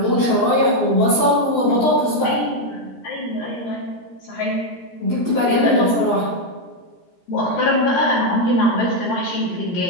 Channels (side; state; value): right; late; 17 ms